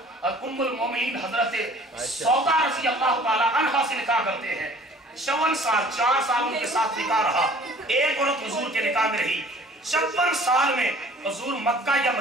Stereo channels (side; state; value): both; normal; correlation 0.51